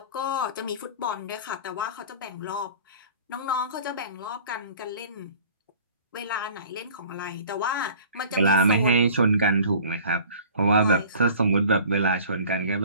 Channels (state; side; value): inverted; both; correlation -0.46